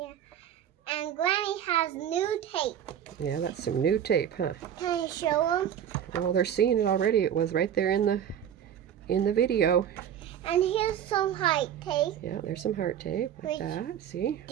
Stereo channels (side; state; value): left; quieter; 9.6 dB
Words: And Granny has new tape. Yeah, that's some new tape, huh? Can you show them? Well, they're seeing it already. It was right there in the video. And here's some heart tape. Yeah, there's some heart tape like that. See?